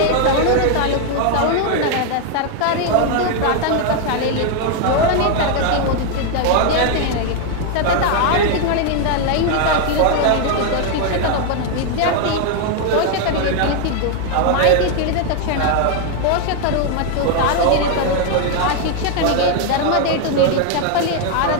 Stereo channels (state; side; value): different; both; correlation 0.01